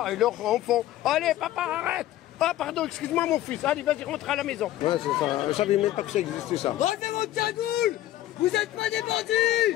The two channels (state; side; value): quieter; right; 14.2 dB